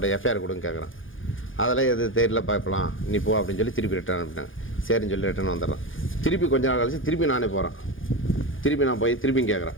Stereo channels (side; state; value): right; late; 0.58 ms